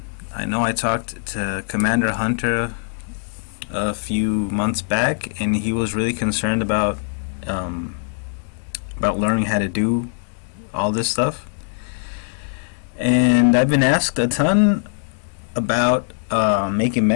know I talked to Commander Hunter a few months back, and he was really concerned about learning how to do all this stuff. And I've been asked a ton about making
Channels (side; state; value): right; silent; digital silence